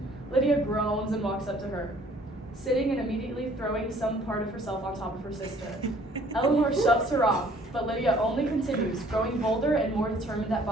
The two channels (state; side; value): normal; both; correlation 0.57